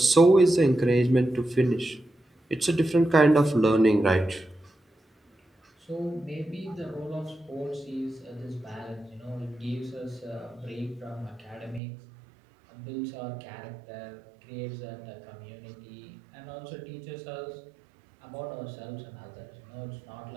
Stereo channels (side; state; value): left; drops out; at 11.8 s